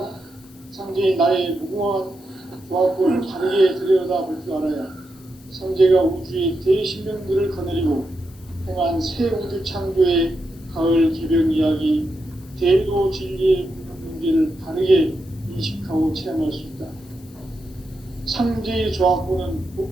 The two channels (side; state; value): left; noise; hiss, 27 dB below the sound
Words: 상제인 나의 무궁한 조화권을 다르게 들여다볼 줄 알아야 상제가 우주의 대신명들을 거느리고 행한 새 우주 창조의 가을 개벽 이야기, 대도 진리의 문제를 다르게 인식하고 체험할 수 있다. 상제의 조화권은